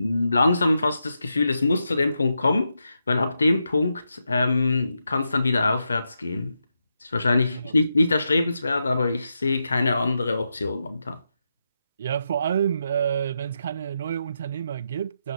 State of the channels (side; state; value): both; inverted; correlation -0.85